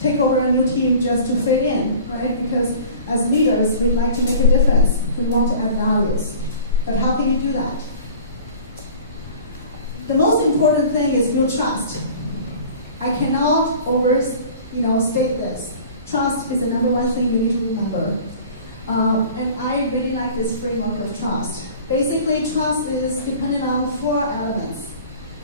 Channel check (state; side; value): inverted; both; correlation -0.44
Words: take over a new team just to fit in, right? Because as leaders, we'd like to make a difference. We want to add values. But how can you do that? The most important thing is build trust. I cannot state this. Trust is the number one thing you need to remember. And I really like this framework of trust. Basically, trust is dependent on 4 elements: